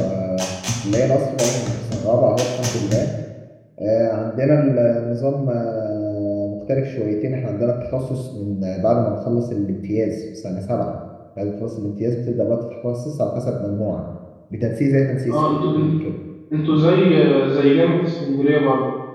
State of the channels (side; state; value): both; identical; correlation 1.00